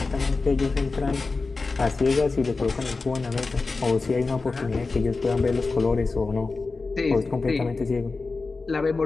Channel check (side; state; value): right; quieter; 3.9 dB